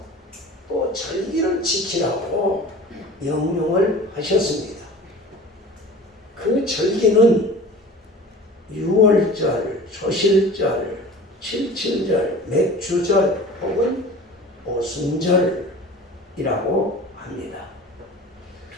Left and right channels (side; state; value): both; normal; correlation 0.40